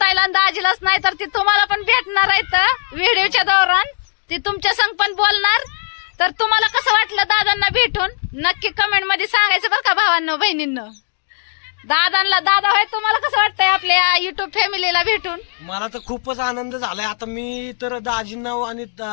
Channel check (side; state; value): right; silent; digital silence